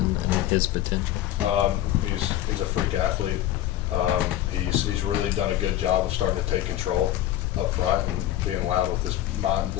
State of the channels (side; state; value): right; quieter; 13.2 dB